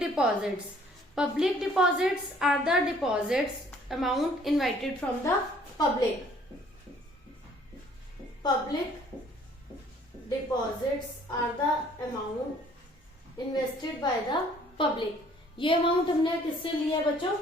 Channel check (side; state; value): both; normal; correlation 0.58